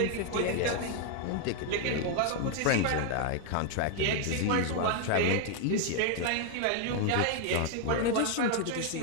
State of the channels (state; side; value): different; both; correlation 0.00